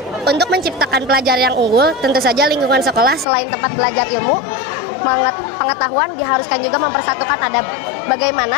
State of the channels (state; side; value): drops out; right; at 3.2 s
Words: untuk menciptakan pelajar yang unggul, tentu saja lingkungan sekolah selain tempat belajar ilmu, pengetahuan diharuskan juga mempersatukan adab.